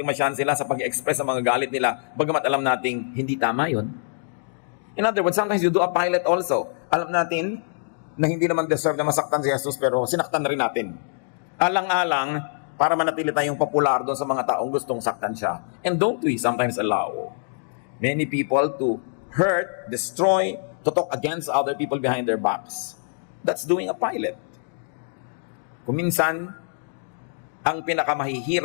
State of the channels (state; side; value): silent; right; digital silence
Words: masyahan sila sa pag-express ng mga galit nila, bagamat alam nating hindi tama yun. In other words, sometimes you do a pilot also. Alam natin na hindi naman deserve na masaktan si Jesus, pero sinaktan na rin natin. Alang-alang, para manatili tayong popular doon sa mga taong gustong saktan siya. And don't we sometimes allow many people to hurt, destroy, to talk against other people behind their backs? That's doing a pilot. Kung minsan, ang